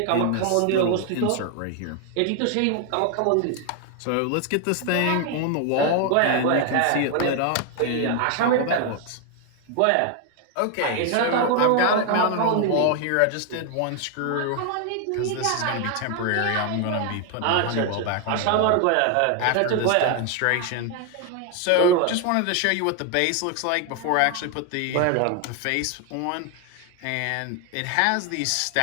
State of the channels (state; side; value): different; both; correlation 0.01